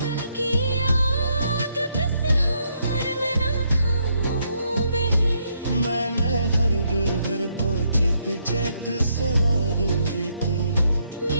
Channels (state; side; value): inverted; both; correlation -0.75